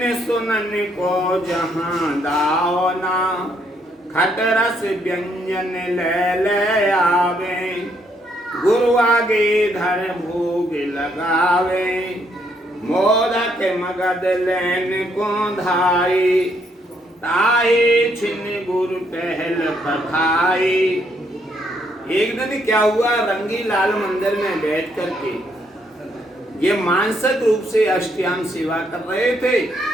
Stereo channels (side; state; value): both; normal; correlation 0.72